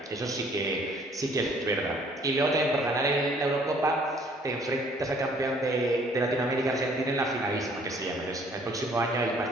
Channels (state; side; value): normal; both; correlation 0.59